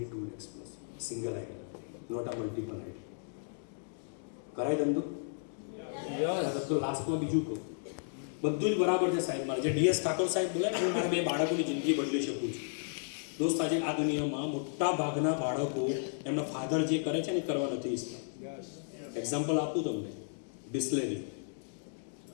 lakhs plus, single ID, not આ મલ્ટિપલ આઈડી. કરાય ધંધો? તો લાસ્ટમાં બીજું કહું, બધું જ બરાબર છે સાહેબ. મારે જે ડીએસ ઠાકોર સાહેબ બોલે ને, હું મારા 2 બાળકોની જિંદગી બદલી શકું છું. દોસ્ત આજે આ દુનિયામાં મોટા ભાગના બાળકો એમના ફાધર જે કરે છે ને એ કરવા નથી ઈચ્છતા. એક્ઝામ્પલ આપું તમને,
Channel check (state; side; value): silent; right; digital silence